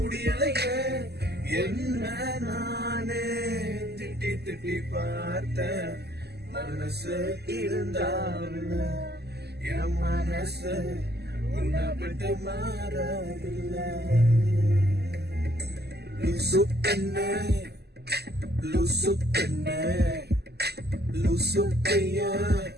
என்ன நானே திட்டி திட்டி பார்த்த மனசு இருந்தாவில்ல, என் மனசு உன்னை விட்டு மாறவில்லை. லூசு பெண்ணே லூசு பெண்ணே லூசு பையா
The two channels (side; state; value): left; late; 0.47 ms